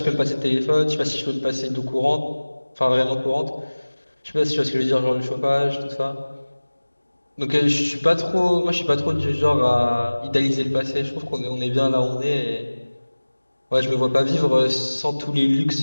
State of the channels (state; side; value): inverted; both; correlation -1.00